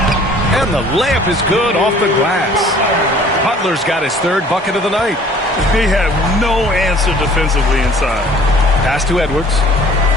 And the layup is good off the glass. Butler's got his 3rd bucket of the night. They have no answer defensively inside. Pass to Edwards.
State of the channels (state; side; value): normal; both; correlation 0.52